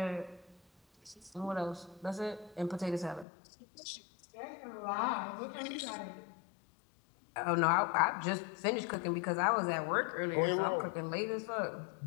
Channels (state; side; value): drops out; right; at 3.2 s